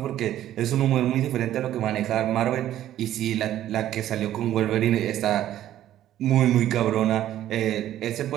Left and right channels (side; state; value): left; quieter; 12.5 dB